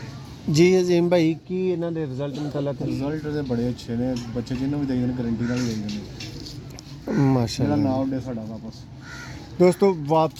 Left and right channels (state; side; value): identical; both; correlation 1.00